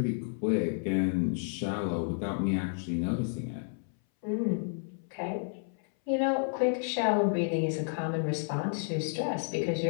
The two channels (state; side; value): silent; right; 57 dB below the other